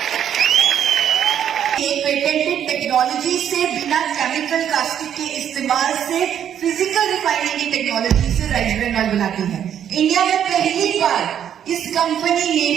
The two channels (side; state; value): left; quieter; 9.5 dB